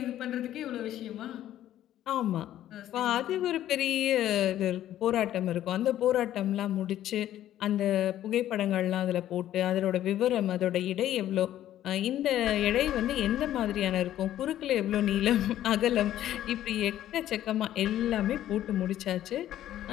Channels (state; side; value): quieter; right; 12.4 dB